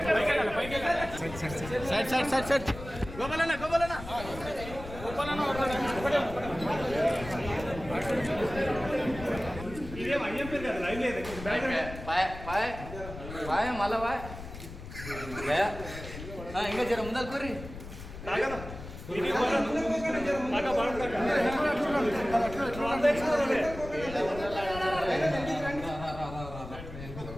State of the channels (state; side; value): noise; left; rumble, 11 dB below the sound